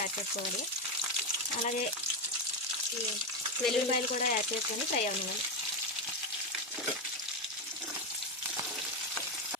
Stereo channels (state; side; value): normal; both; correlation 0.10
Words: యాడ్ చేసుకోవాలి. అలాగే వెల్లుల్లిపాయలు కూడా యాడ్ చేసుకొని ఫ్రై అవ్వాలి.